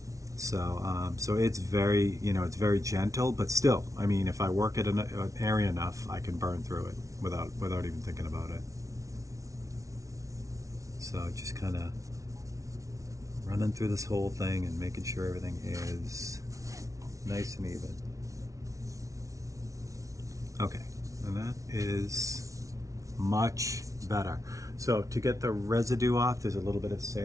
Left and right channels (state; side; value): late; left; 0.16 ms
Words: So, so it's very, you know, it's very gentle, but still, I mean, if I work at an area enough, I can burn through it without even thinking about it. So just kind of running through this whole thing and making sure everything is nice and even. And that is much better. So to get the residue off, there's a little bit of